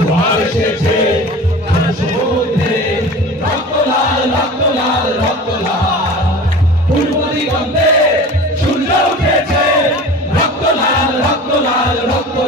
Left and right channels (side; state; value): both; normal; correlation 0.37